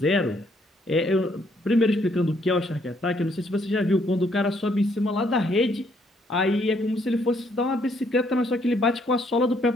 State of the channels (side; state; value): both; normal; correlation 0.69